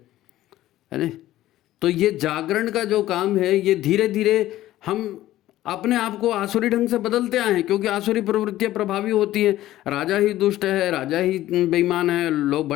नहीं। तो ये जागरण का जो काम है, ये धीरे धीरे हम अपने आप को आसुरी ढंग से बदलते आए हैं, क्योंकि आसुरी प्रवृत्तियां प्रभावी होती हैं। राजा ही दुष्ट है, राजा ही बेईमान है, लोग,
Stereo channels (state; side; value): quieter; right; 14.7 dB